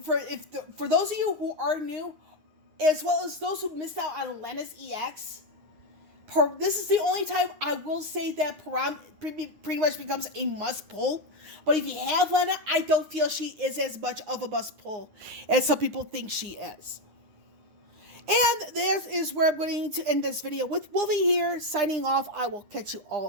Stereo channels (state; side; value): late; left; 9.7 ms